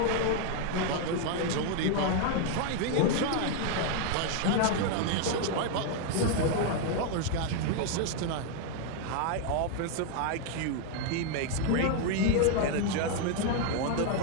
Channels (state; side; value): different; both; correlation 0.00